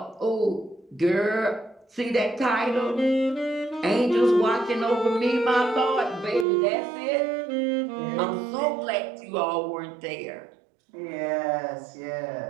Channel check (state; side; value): drops out; left; at 6.5 s